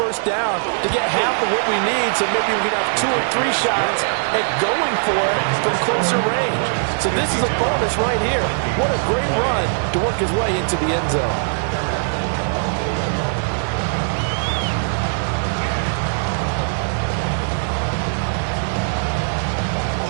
down to get half of what we need, so maybe we can have 2 or 3 shots at going for it from closer range. So this is a bonus right here. What a great run to work his way into the end zone.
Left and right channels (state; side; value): silent; left; digital silence